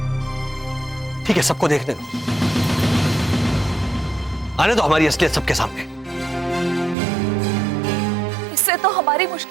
ठीक है, सबको देखने दो। आने दो हमारी असलियत सबके सामने। इससे तो हमारी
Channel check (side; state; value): left; drops out; at 7.0 s